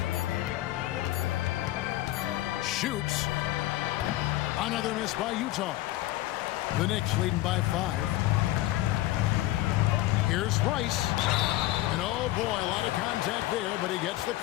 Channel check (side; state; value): right; quieter; 16.2 dB